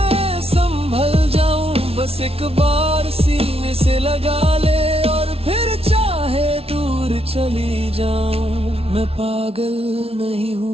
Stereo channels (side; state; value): left; late; 0.28 ms